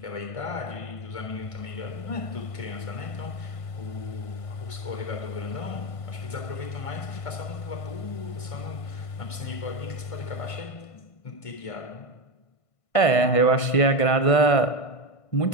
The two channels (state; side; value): late; right; 1.5 ms